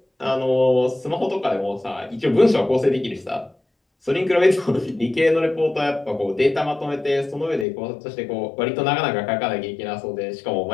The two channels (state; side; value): drops out; right; at 7.7 s